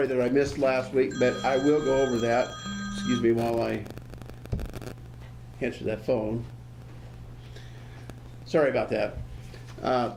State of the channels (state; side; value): identical; both; correlation 1.00